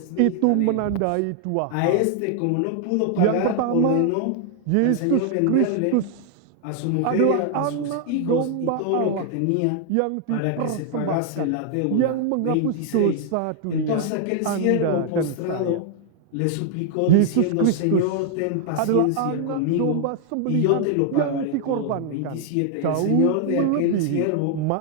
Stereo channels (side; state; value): both; different; correlation 0.00